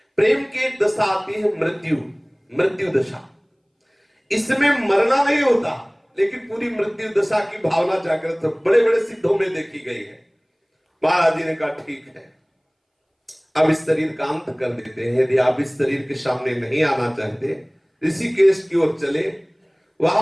प्रेम की एक दशा आती है, मृत्यु दशा। इसमें मरना नहीं होता, लेकिन पूरी मृत्यु दशा की भावना जागृत बड़े बड़े सिद्धों में देखी गई है। महाराज जी ने कहा ठीक है, अब इस शरीर का अंत कर देते हैं। यदि आप इस शरीर के सामने नहीं आना चाहते, ऋषिकेश की ओर चले।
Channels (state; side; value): identical; both; correlation 1.00